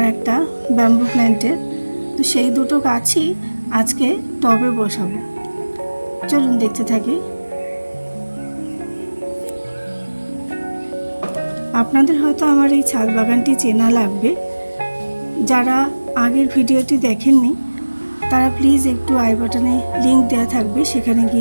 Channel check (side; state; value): both; inverted; correlation -1.00